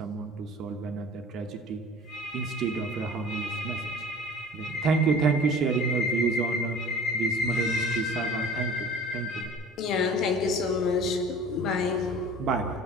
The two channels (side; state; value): both; normal; correlation 0.43